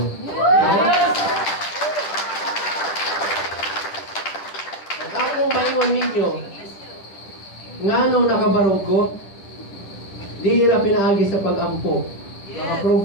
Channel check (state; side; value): late; right; 10 ms